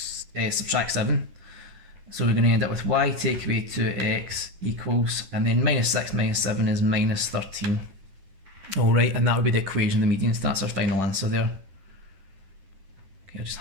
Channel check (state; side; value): late; left; 10 ms